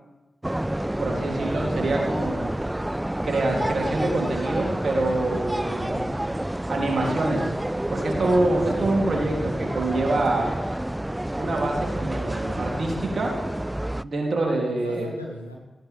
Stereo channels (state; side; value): normal; both; correlation 0.94